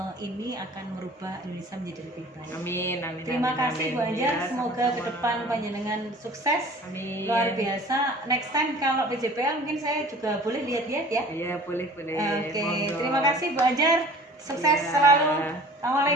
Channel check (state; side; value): normal; both; correlation 0.46